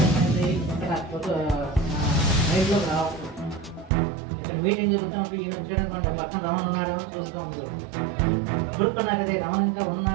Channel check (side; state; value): left; drops out; at 3.9 s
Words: ఇక్కడ మైండ్లోకి రావట్లేదు. ఇక్కడ మీటింగ్ జరుగుతున్నప్పుడు ఈయన వచ్చాడు పక్కన రమణ ఉన్నాడేమో చూస్తూ ఉంటాడు. ఇప్పుడు నాకు అదే రమణ ఇంకా